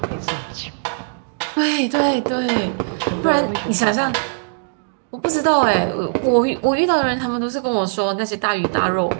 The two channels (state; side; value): silent; left; digital silence